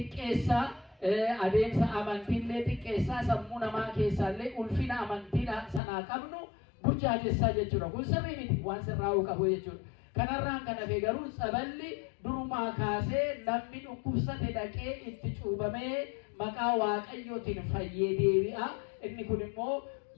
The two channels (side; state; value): right; drops out; at 5.8 s